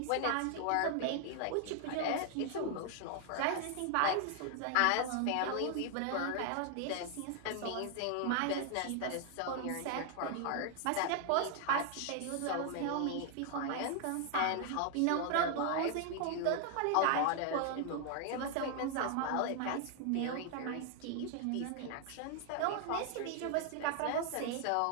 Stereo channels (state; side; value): different; both; correlation 0.00